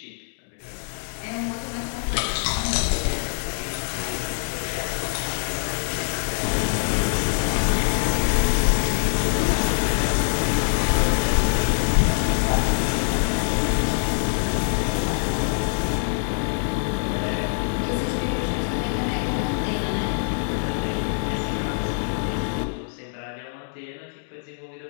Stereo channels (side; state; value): right; silent; digital silence